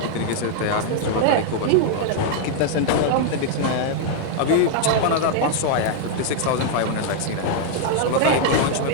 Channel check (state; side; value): different; both; correlation -0.01